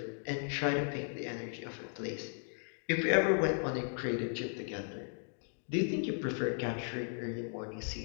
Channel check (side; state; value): right; silent; 54 dB below the other